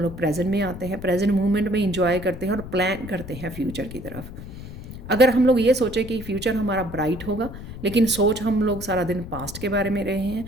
लोग प्रेजेंट में आते हैं, प्रेजेंट मोमेंट में इंजॉय करते हैं और प्लान करते हैं फ्यूचर की तरफ। अगर हम लोग ये सोचें कि फ्यूचर हमारा ब्राइट होगा, लेकिन सोच हम लोग सारा दिन पास्ट के बारे में रहे हैं,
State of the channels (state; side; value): noise; left; rumble, 12 dB below the sound